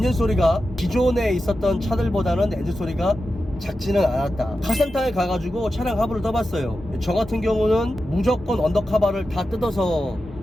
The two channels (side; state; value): both; normal; correlation 0.91